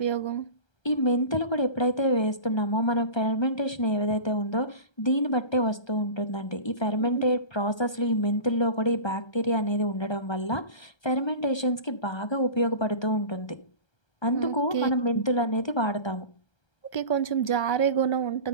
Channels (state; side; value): late; right; 1.3 ms